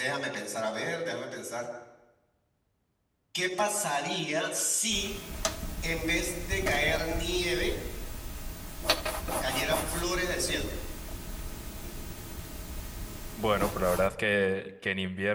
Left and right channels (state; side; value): identical; both; correlation 1.00